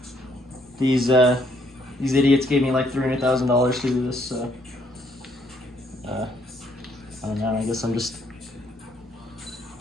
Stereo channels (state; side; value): normal; both; correlation 0.69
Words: These idiots gave me like $300,000 to do this. I don't know. I guess I'm just